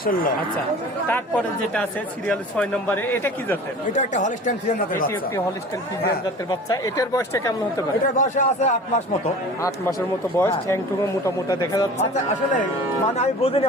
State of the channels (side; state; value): both; normal; correlation 0.40